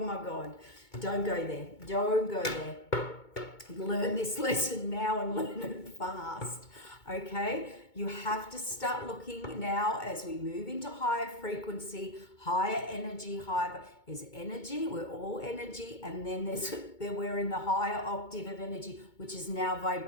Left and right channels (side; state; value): right; late; 2.2 ms